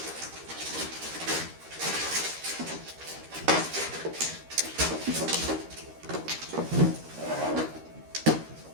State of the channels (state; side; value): late; left; 13 ms